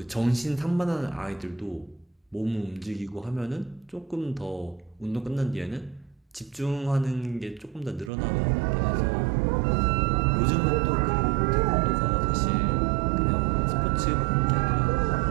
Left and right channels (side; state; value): left; drops out; at 8.1 s